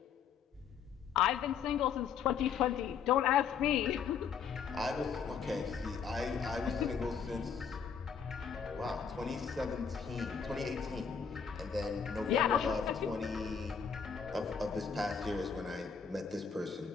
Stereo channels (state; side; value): quieter; right; 6.7 dB